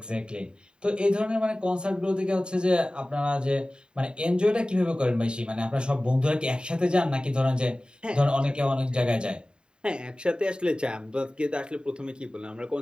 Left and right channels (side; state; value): left; late; 0.050 ms